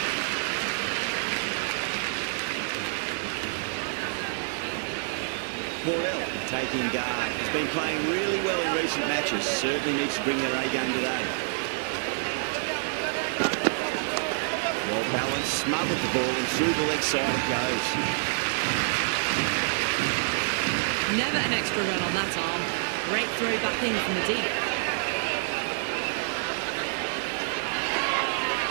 Morel taking guard. He's been playing really well in recent matches. Certainly needs to bring their A game today. Well balanced, smothered the ball and through the leg side it goes. Never an extra run on that arm. Great throw back in from the deep.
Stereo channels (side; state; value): left; silent; digital silence